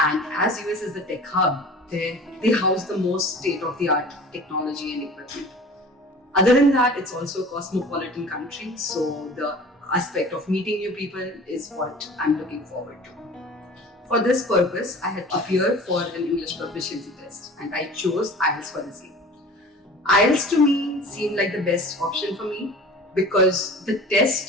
as US is the tech hub, they house the most state-of-the-art technology and equipment. Other than that, it's also a cosmopolitan country, so the aspect of meeting new people is what I'm looking forward to. For this purpose, I had appeared for an English proficiency test and I chose IELTS for the same. IELTS to me seemed like the best option for me because the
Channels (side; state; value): both; normal; correlation 0.42